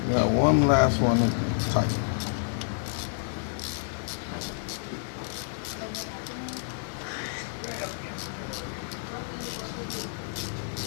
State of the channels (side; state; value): right; silent; digital silence